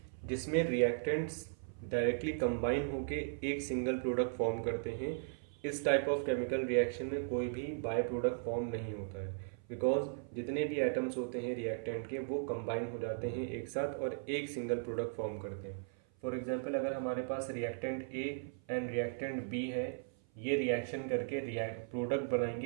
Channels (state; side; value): silent; left; 53 dB below the other